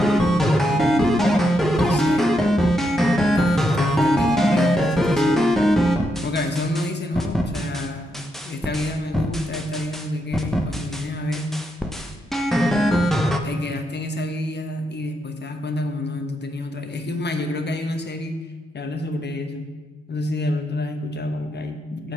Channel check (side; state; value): both; normal; correlation 0.81